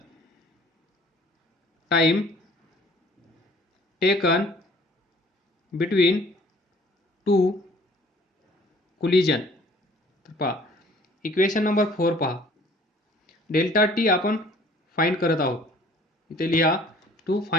between two collision. तर पहा, इक्वेशन नंबर 4 पहा, डेल्टा टी आपण फाइंड करत आहोत. इथे लिहा to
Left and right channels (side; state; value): both; normal; correlation 0.54